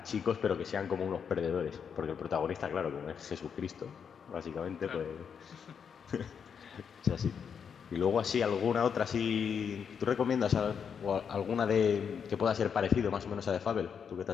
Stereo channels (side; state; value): right; quieter; 7.0 dB